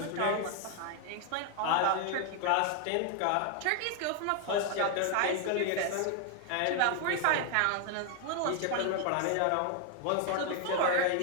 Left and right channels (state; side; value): different; both; correlation 0.00